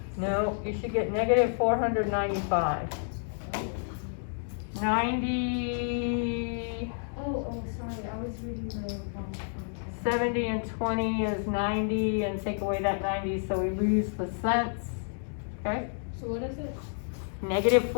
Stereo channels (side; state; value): right; silent; digital silence